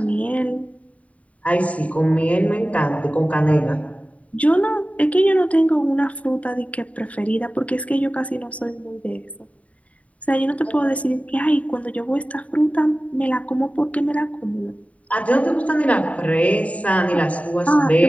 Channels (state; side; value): late; right; 0.067 ms